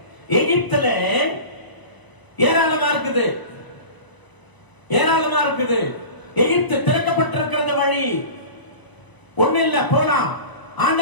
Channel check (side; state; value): right; late; 1.0 ms